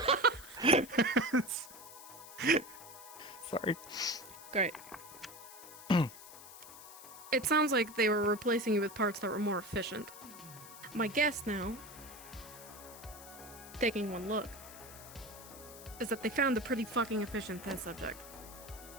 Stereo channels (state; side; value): noise; left; hiss, 16 dB below the sound